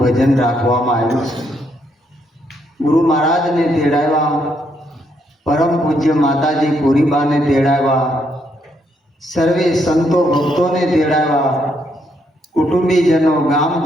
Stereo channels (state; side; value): normal; both; correlation 0.74